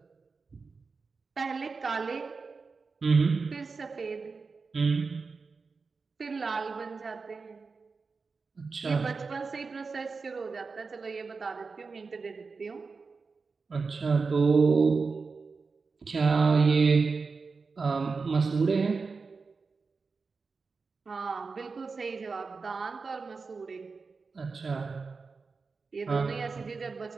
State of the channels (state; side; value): quieter; left; 4.5 dB